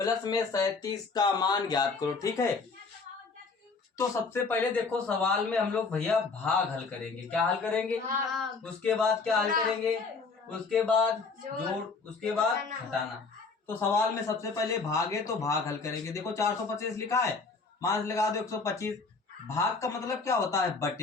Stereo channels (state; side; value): quieter; right; 4.4 dB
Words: में 37 का मान ज्ञात करो। ठीक है, तो सबसे पहले देखो सवाल में हम लोग भैया भाग हल करेंगे। क्या हल करेंगे? उसके बाद क्या हल करेंगे? उसके बाद जोड़, उसके बाद घटाना। तो सवाल में सबसे पहले भाग है तो भाग हल करेंगे। देखो 425 लिखा है, मान लगा दो 125। भाग का मतलब क्या होता है?